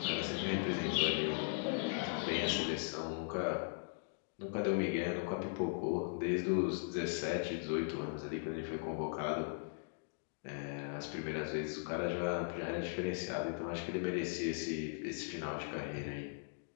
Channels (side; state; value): right; silent; digital silence